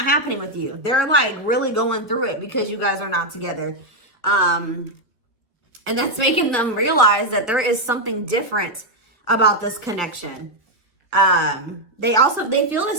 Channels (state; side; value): normal; both; correlation 0.01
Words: happening with you. They're like really going through it because you guys are not together. And that's making them realize that there is something different about this connection. They feel